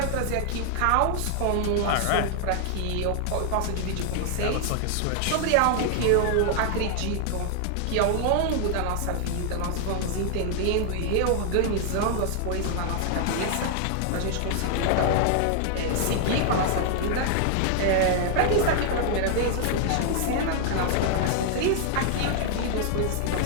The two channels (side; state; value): both; different; correlation 0.00